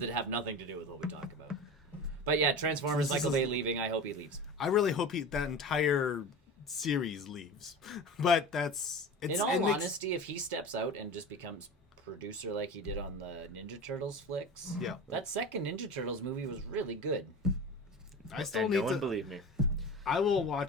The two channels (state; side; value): normal; both; correlation 0.31